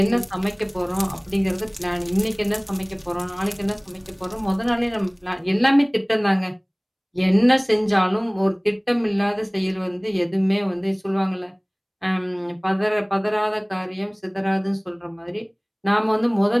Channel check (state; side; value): identical; both; correlation 1.00